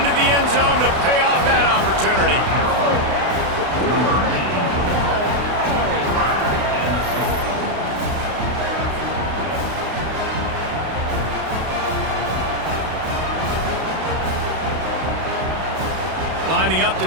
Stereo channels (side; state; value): left; late; 32 ms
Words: the end zone to pay off that opportunity. Lining up to